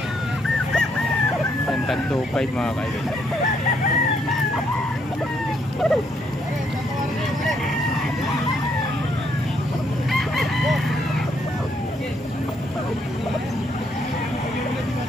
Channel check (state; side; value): normal; both; correlation 0.72